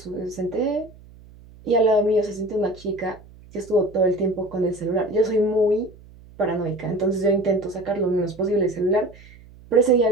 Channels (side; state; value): right; noise; hum, 23 dB below the sound